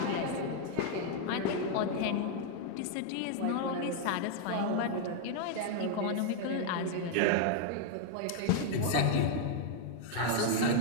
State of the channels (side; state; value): both; different; correlation 0.00